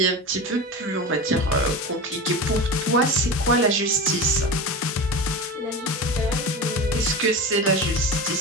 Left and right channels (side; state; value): both; normal; correlation 0.27